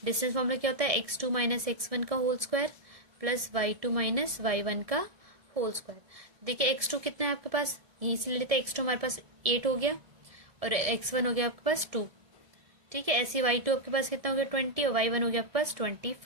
डिस्टेंस फॉर्मूला क्या होता है, x2 - x1 का whole square plus y2 - y1 का होल स्क्वायर। देखिए x2 कितना है आपके पास, यहीं से ले लेते हैं, x2 हमारे पास 8 हो गया, और x1 हो गया आपके पास 2, ठीक है। ऐसे y2 आपके पास कितना हो गया, 20, और y1 हो गया आपके पास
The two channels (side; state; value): left; late; 1.7 ms